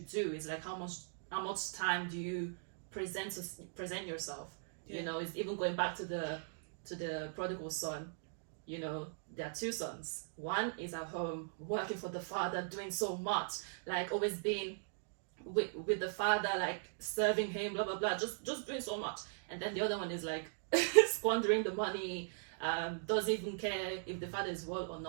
it's like how much time do you present yourself. You know, it's even going back to the prodigal son. You know, there are two sons. One is at home working for the father, doing so much, like always being with the father, like serving him, blah blah blah, just doing so much. And then the other one is like squandering the money, doesn't even care if the father is well or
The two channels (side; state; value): left; silent; digital silence